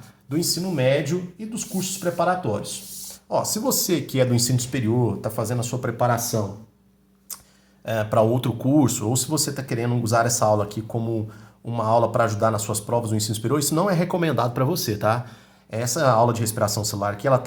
Do ensino médio e dos cursos preparatórios. Ó, se você que é do ensino superior, está fazendo a sua preparação para outro curso, ou se você está querendo usar essa aula aqui como uma aula para ajudar nas suas provas do ensino superior, isso não é recomendado para você, tá? Essa aula de respiração celular aqui, ela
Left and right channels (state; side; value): identical; both; correlation 1.00